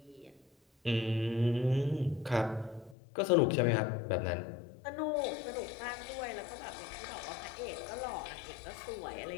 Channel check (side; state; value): right; drops out; at 3.0 s